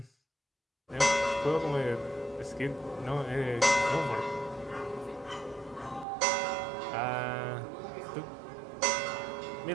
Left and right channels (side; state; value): left; drops out; at 6.1 s